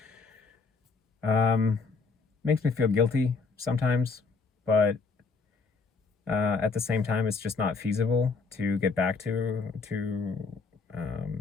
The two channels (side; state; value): right; quieter; 4.6 dB